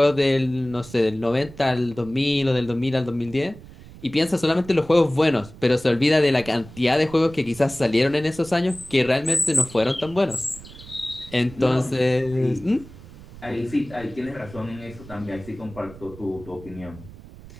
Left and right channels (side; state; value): right; noise; rumble, 18 dB below the sound